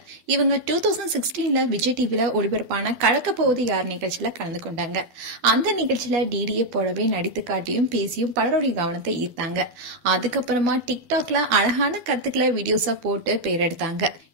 இவங்க 2016 விஜய் டிவில ஒளிபரப்பான கலக்க போவது யார் நிகழ்ச்சியில கலந்து கொண்டாங்க. அந்த நிகழ்ச்சியில டிடியை போலவே நடித்து காட்டியும் பேசியும் பலருடைய கவனத்தை ஈர்த்தாங்க. அதுக்கப்புறமா டிக்டாக்ல அழகான கருத்துக்களை வீடியோஸா போட்டு பேர் எடுத்தாங்க.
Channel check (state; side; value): late; left; 12 ms